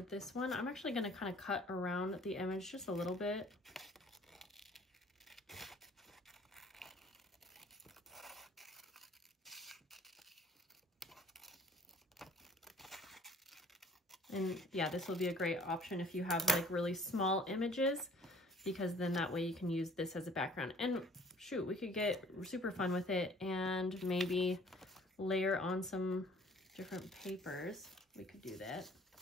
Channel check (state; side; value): normal; both; correlation 0.53